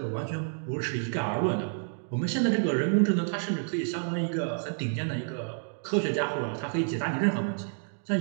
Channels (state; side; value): silent; left; digital silence